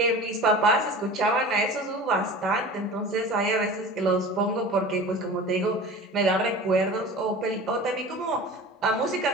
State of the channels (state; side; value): normal; both; correlation 0.37